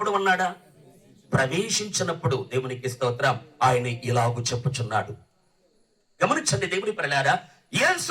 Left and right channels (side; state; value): both; identical; correlation 1.00